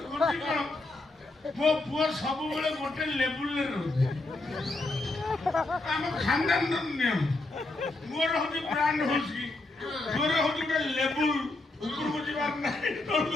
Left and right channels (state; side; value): quieter; right; 3.0 dB